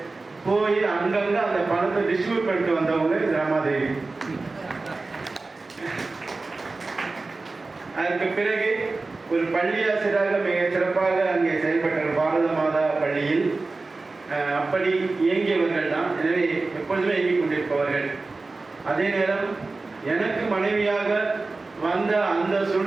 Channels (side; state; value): left; quieter; 3.6 dB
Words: போய் அங்கங்க அந்த பணத்தை டிஸ்ட்ரிபியூட் பண்ணிட்டு வந்தவங்க ரமாதேவி. அதற்கு பிறகு ஒரு பள்ளி ஆசிரியராக மிக சிறப்பாக அங்கே செயல்பட்டார் பாரத மாதா பள்ளியில். அப்படி இயங்கியவர்கள் தான். எனவே எப்பொழுதுமே இயங்கிக் கொண்டிருப்பவர்கள். அதே நேரம் எனக்கு மனைவியாக வந்த அந்த